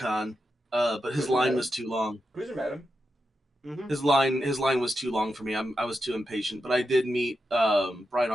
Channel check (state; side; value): normal; both; correlation 0.87